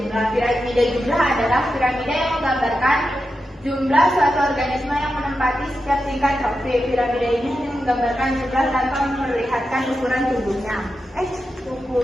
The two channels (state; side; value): normal; both; correlation 0.89